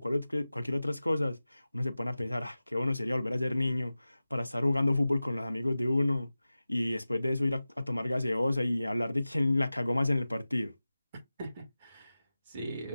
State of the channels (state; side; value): inverted; both; correlation -0.96